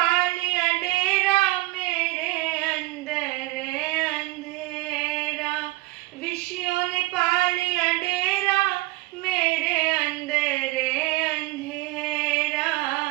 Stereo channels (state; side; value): quieter; left; 20.5 dB